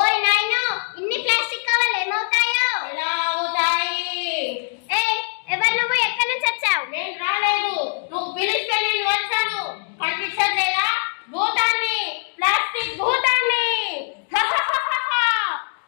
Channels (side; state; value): right; silent; digital silence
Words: నాయనో, ఇన్ని ప్లాస్టిక్ కవర్లు ఏమవుతాయో? ఎలా అవుతాయి? ఎవరు నువ్వు? ఎక్కడి నుంచి వచ్చావు? నేను రాలేదు, నువ్వు పిలిస్తే నేను వచ్చాను. కనిపించట్లేదా? భూతాన్ని, ప్లాస్టిక్ భూతాన్ని.